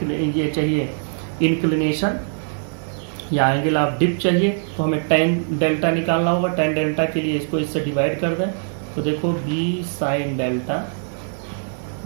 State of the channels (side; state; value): left; silent; 64 dB below the other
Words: चाहिए इंक्लिनेशन या एंगल ऑफ डिप चाहिए तो हमें टेन डेल्टा निकालना होगा। टेन डेल्टा के लिए इसको इससे डिवाइड कर दें, तो देखो B sine delta